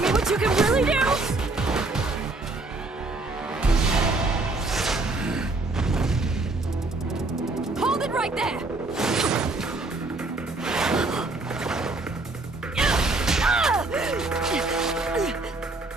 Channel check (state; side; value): quieter; left; 3.2 dB